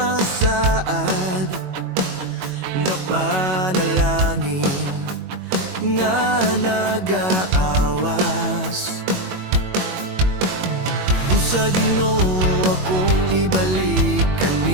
saad nga panalangin nga nagaawas. Sa Ginoo akong ibalik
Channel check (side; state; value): left; late; 21 ms